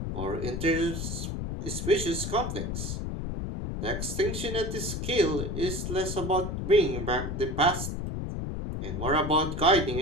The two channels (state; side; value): noise; left; rumble, 4 dB below the sound